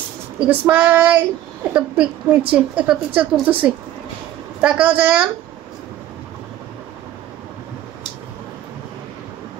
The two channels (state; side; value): quieter; left; 13.0 dB